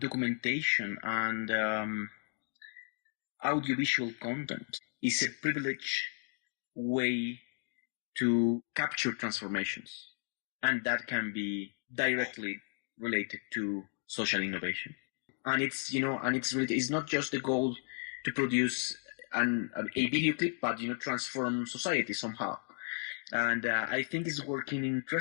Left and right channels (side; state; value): right; silent; 55 dB below the other